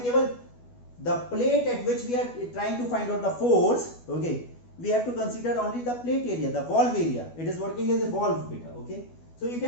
केवल the plate at which we are trying to find out the force, okay, we have to consider only the plate area, the valve area. It is working as a valve beta, okay? So you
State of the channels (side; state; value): right; late; 12 ms